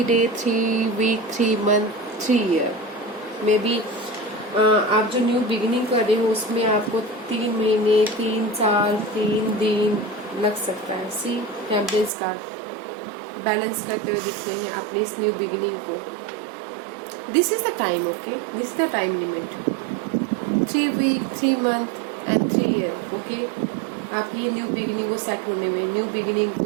day, 3 week, 3 month, 3 year, may be आप जो न्यू बिगिनिंग कर रहे हो उसमें आपको 3 महीने, 3 साल, 3 दिन लग सकता है। सी टेम्परेंस कार्ड बैलेंस करते हुए दिख रहे हैं अपनी इस न्यू बिगिनिंग को। This is the time, okay, this is the time limit, 3 week, 3 month and 3 year, okay. आप ये न्यू बिगिनिंग को सेट होने में, न्यू बिगिनिंग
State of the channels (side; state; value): left; drops out; at 12.1 s